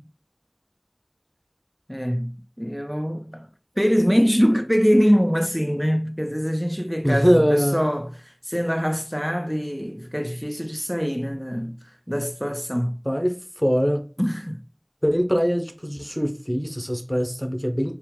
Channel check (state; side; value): identical; both; correlation 1.00